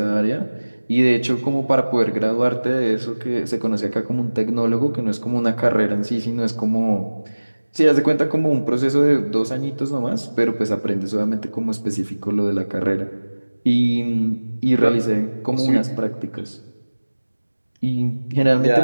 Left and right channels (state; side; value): inverted; both; correlation -1.00